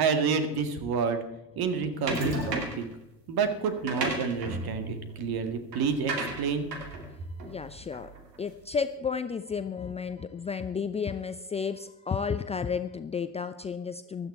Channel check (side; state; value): both; normal; correlation 0.20